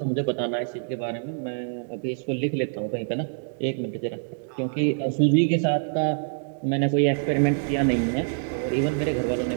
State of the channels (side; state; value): left; silent; digital silence